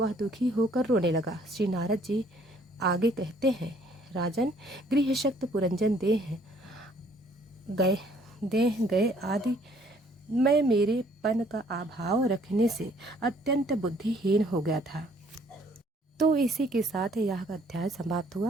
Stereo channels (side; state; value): both; normal; correlation 0.62